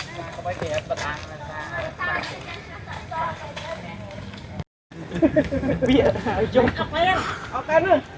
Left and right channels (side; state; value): both; identical; correlation 1.00